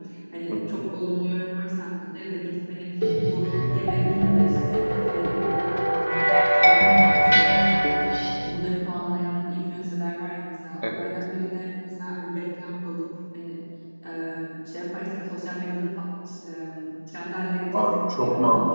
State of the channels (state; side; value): inverted; both; correlation -1.00